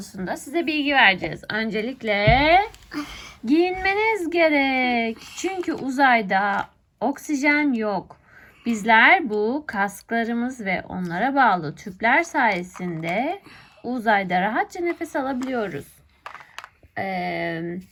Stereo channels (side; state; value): both; identical; correlation 1.00